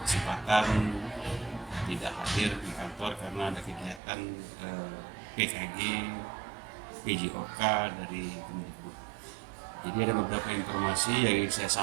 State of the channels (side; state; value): left; drops out; at 4.0 s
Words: kesempatan tidak hadir di kantor karena ada kegiatan PKG PJOK dari Kemdikbud. Jadi ada beberapa informasi yang ingin saya